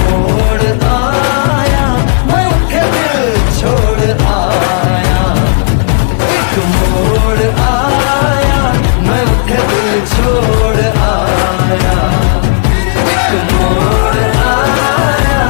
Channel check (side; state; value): right; silent; digital silence